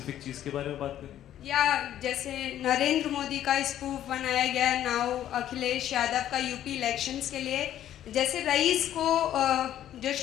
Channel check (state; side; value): quieter; right; 11.7 dB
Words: चीज़ के बारे में बात करें? या जैसे नरेंद्र मोदी का स्पूफ बनाया गया, नाउ अखिलेश यादव का यूपी इलेक्शंस के लिए, जैसे रईस को जो